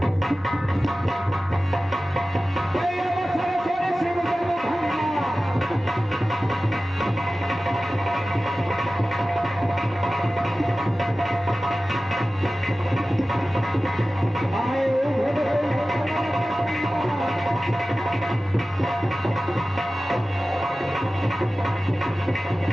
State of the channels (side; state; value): both; normal; correlation 0.96